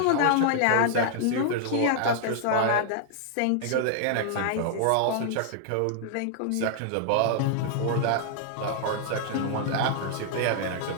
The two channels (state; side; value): different; both; correlation -0.01